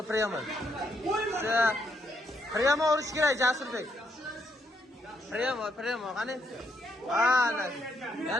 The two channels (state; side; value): normal; both; correlation 0.76